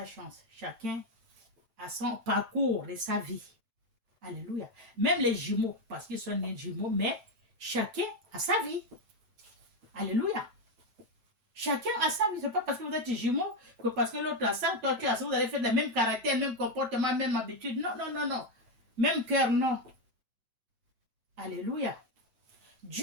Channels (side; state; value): left; late; 7.9 ms